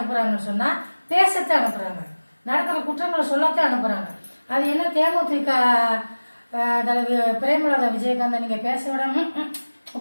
சொன்னால் பேசத்தான் அனுப்புகிறாங்க, நடக்கிற குற்றங்களை சொல்லத்தான் அனுப்புகிறாங்க. அது என்ன தேமுதிக தலைவி பிரேமலதா விஜயகாந்த் நீங்கள் பேச விடாம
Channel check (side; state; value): both; inverted; correlation -1.00